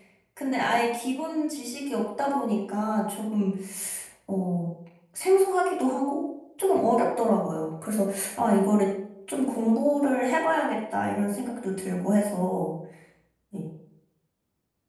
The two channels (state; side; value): identical; both; correlation 1.00